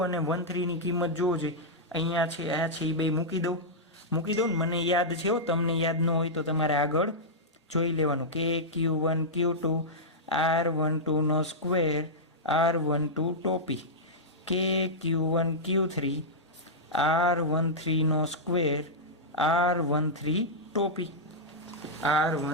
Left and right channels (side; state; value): both; normal; correlation -0.09